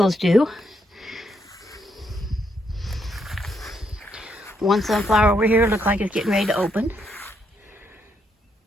do. One sunflower over here looks like it's getting ready to open.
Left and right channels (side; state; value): both; normal; correlation 0.77